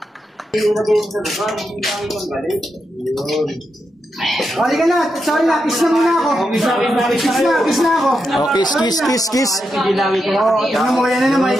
Halika na, sorry na, kiss na muna ako. Kiss na ako. Oh, kiss. Oo, tingnan mo, yan na naman,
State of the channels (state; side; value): normal; both; correlation 0.85